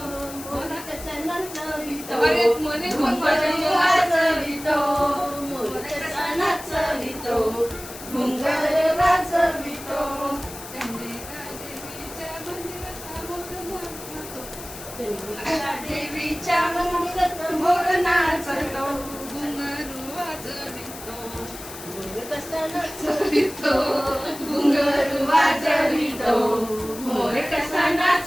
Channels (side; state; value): left; noise; hiss, 13 dB below the sound